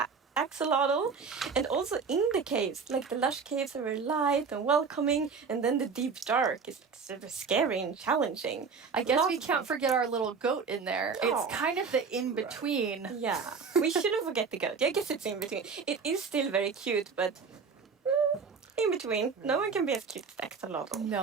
axolotl, and also in the caves, like the lush caves are very light and welcoming, and then the deep dark is like super scary and challenging. I guess we Lots of can't forget our little goat in there. Oh. It's kind of the in between. Yeah, we shouldn't forget the goat. I guess it's in between. It is still very cute, but in between. No one can be as cute as Axolotl.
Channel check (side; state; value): left; quieter; 5.4 dB